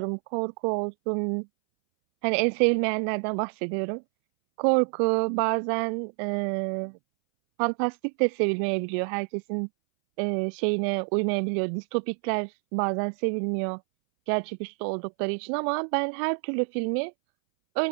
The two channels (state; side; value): silent; left; 60 dB below the other